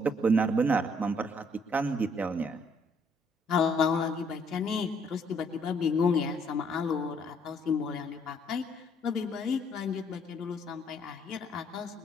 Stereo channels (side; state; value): both; normal; correlation 0.66